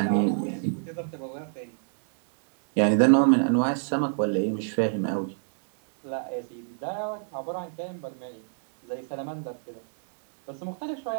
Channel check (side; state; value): left; silent; digital silence